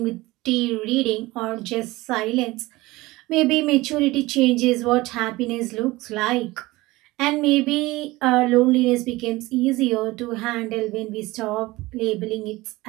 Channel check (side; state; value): left; quieter; 20.1 dB